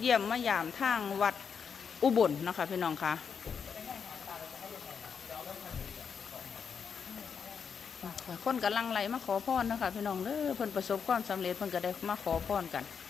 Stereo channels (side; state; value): right; quieter; 6.6 dB